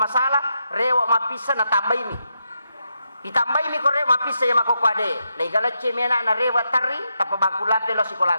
rewa mapisa na tambay mi itambay mi ko rewa mapisa ya makokode legala chemena na rewa tari tapabangkulate lo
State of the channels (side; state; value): both; inverted; correlation -0.83